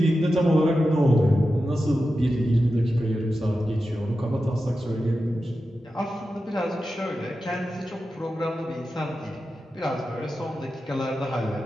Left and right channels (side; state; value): both; normal; correlation 0.91